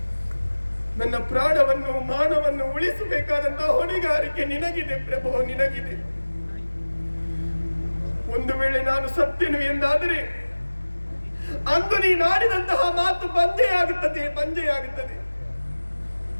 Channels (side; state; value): both; inverted; correlation -1.00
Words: ನನ್ನ ಪ್ರಾಣವನ್ನು, ಮಾನವನ್ನು ಉಳಿಸಬೇಕಾದಂತಹ ಹೊಣೆಗಾರಿಕೆ ನಿನಗಿದೆ ಪ್ರಭು, ನಿನಗಿದೆ. ಒಂದು ವೇಳೆ ನಾನು ಸತ್ಯನು ಎಂದಾದರೆ ಅಂದು ನೀನಾಡಿದಂತಹ ಮಾತು ಬಂಜೆಯಾಗುತ್ತದೆ, ಬಂಜೆಯಾಗುತ್ತದೆ.